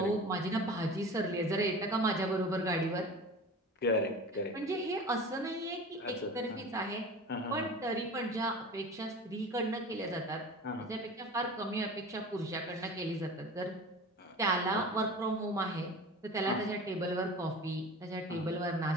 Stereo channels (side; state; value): both; normal; correlation 0.37